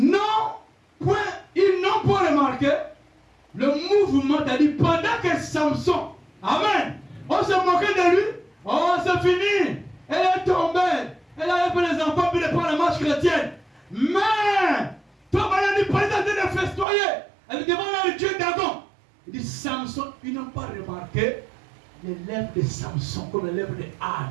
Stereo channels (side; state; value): left; drops out; at 16.9 s